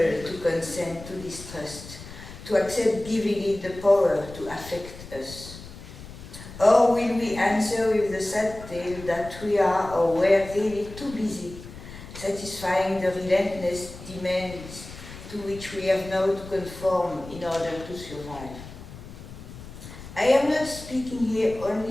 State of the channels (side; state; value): left; noise; rumble, 14 dB below the sound